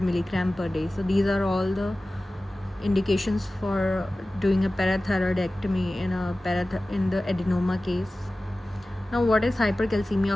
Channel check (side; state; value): both; normal; correlation 0.96